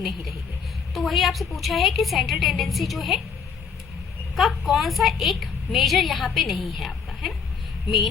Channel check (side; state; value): right; quieter; 6.1 dB